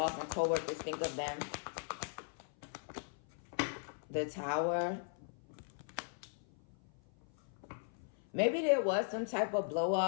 and co-workers think of them? The Tower. Maybe there was some type of blow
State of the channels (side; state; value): right; silent; 52 dB below the other